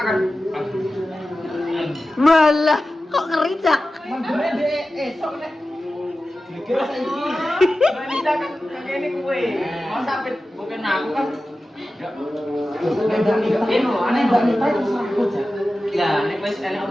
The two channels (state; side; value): normal; both; correlation 0.94